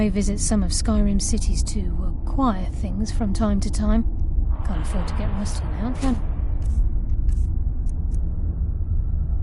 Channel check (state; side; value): identical; both; correlation 1.00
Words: visit some of Skyrim's cities to acquire things from time to time. Can't afford to get rusty now, can I?